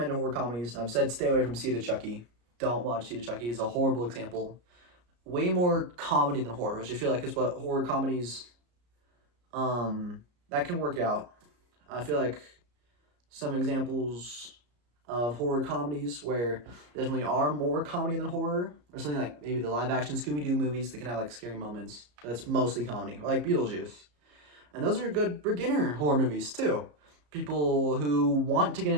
horror comedies. I've said stay away from Seed of Chucky. Don't watch Seed of Chucky. It's a horrible example. Way more comedy than horror, which I feel like is what horror comedies that can work out. I feel like some examples of horror comedies where there definitely are more comedy than horror, or something like maybe the live action Scooby Doo movies that can have like scary moments. That's mostly comedy, or like Beetlejuice. And those are good beginner horror movies too. People who want to get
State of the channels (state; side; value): late; left; 34 ms